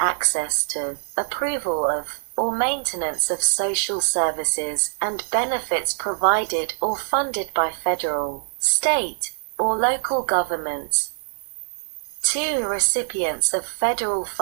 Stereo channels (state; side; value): silent; left; 63 dB below the other